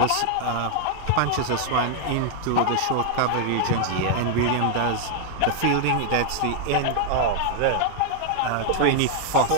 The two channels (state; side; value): different; both; correlation 0.00